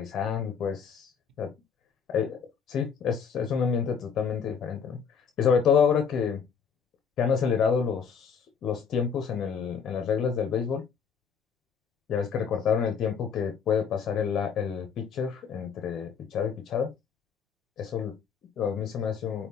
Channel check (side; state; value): right; quieter; 6.6 dB